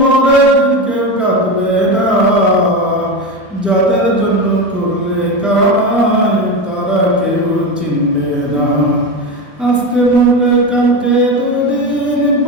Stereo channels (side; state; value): both; normal; correlation 0.19